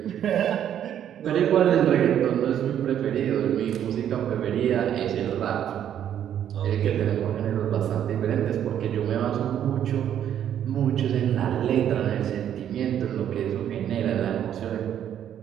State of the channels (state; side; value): quieter; left; 10.1 dB